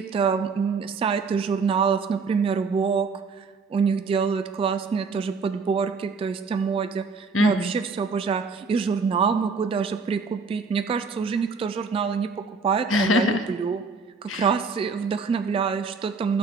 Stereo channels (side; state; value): left; quieter; 4.5 dB